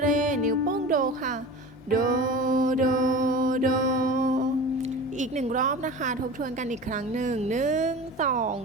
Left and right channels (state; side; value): normal; both; correlation 0.35